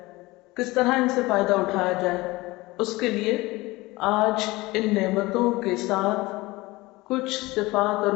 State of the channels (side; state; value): right; quieter; 20.9 dB